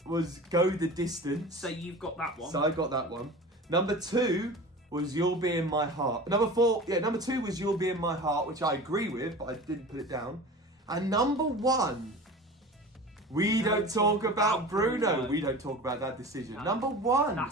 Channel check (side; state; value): both; normal; correlation 0.36